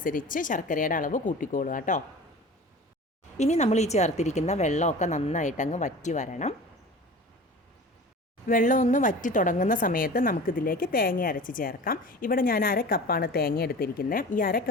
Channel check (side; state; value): both; normal; correlation 0.38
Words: ശർക്കരയുടെ അളവ് കൂട്ടിക്കോളുക കേട്ടോ. ഇനി നമ്മൾ ഈ ചേർത്തിരിക്കുന്ന വെള്ളമൊക്കെ നന്നായിട്ടങ്ങ് വറ്റി വരണം. വെള്ളം ഒന്ന് വറ്റി തുടങ്ങുന്ന സമയത്ത് നമുക്കിതിലേക്ക് തേങ്ങ അരച്ച് ചേർക്കാം. ഇവിടെ ഞാൻ 1/2 കപ്പാണ് തേങ്ങ എടുത്തിരിക്കുന്നത്. ഈ 1/2